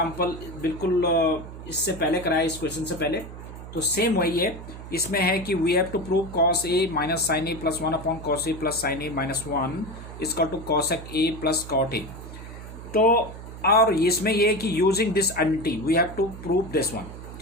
बिल्कुल इससे पहले कराया, इस क्वेश्चन से पहले, तो सेम वही है। इसमें है कि we have to prove cos A minus sine A plus 1 upon cos A plus sine A minus 1 is equal to cosec A plus cot A. तो और इसमें ये है कि using this identity we have to prove this one.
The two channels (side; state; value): right; noise; hum, 13 dB below the sound